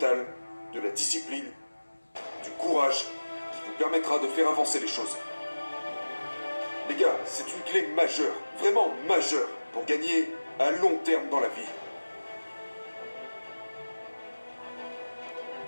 de la discipline, du courage qui vous permettra de faire avancer les choses. Les gars, c'est une clé majeure, vraiment majeure, pour gagner à long terme dans la vie.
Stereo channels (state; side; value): inverted; both; correlation -1.00